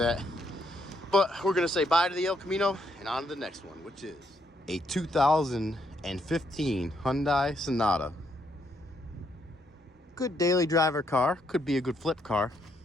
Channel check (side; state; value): both; normal; correlation 0.74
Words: But we're gonna say bye to the El Camino and on to the next one, which is a 2015 Hyundai Sonata. Good daily driver car, could be a good flip car.